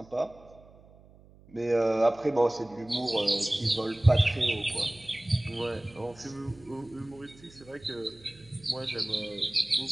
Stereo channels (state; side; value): noise; right; hum, 24 dB below the sound